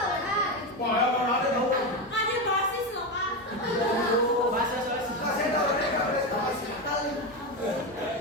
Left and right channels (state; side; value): normal; both; correlation 0.14